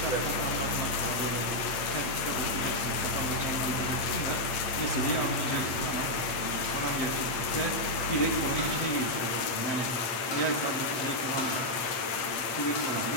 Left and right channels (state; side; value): late; right; 8.7 ms